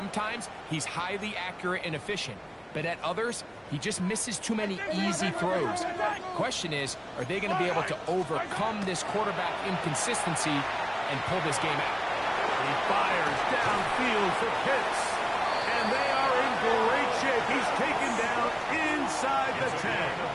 he's highly accurate and efficient, but at others, he just misses too many easy throws. Question is, are they going to be able to overcome this quarterback inconsistency and pull this game out? He fires downfield for Pitts, and they are in great shape. He's taken down inside the 10.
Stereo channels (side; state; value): both; identical; correlation 1.00